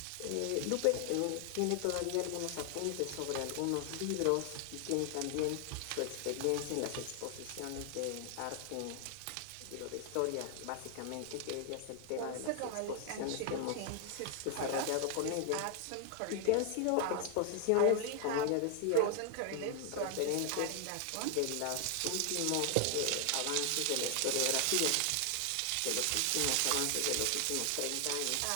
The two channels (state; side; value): different; both; correlation 0.00